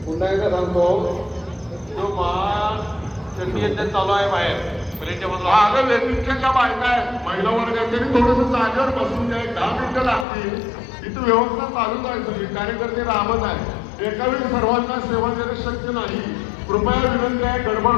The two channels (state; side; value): drops out; right; at 10.2 s